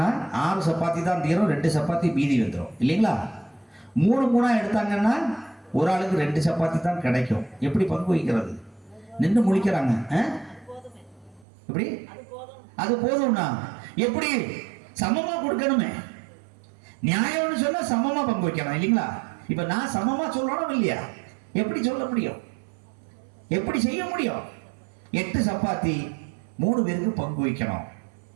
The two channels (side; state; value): left; drops out; at 11.5 s